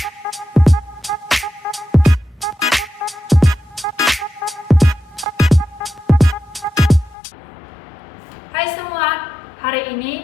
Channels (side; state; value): right; drops out; at 7.2 s